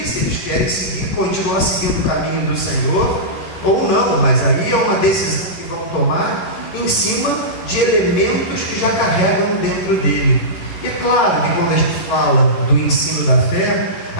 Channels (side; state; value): right; late; 11 ms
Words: se eles querem continuar seguindo o caminho do Senhor ou não. Mas aí é uma decisão que vão tomar em cima de elementos que já carregam dentro dele. E é claro que quando a gente fala do ensino da fé,